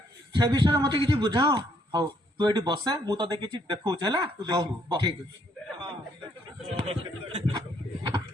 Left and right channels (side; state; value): both; normal; correlation 0.69